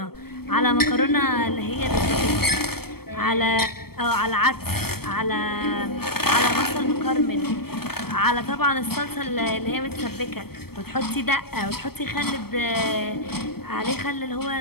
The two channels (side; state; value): right; late; 0.96 ms